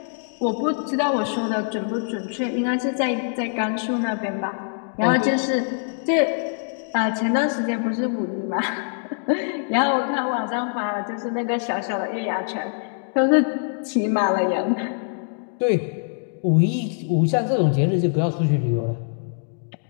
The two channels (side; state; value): right; silent; digital silence